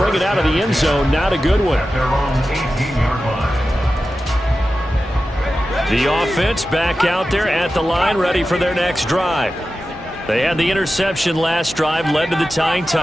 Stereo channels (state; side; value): normal; both; correlation 0.93